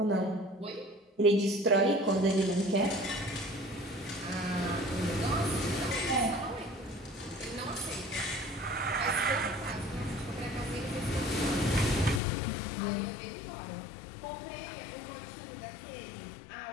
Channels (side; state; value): right; drops out; at 12.2 s